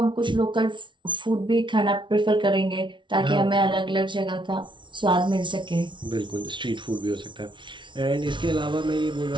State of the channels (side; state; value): left; late; 0.24 ms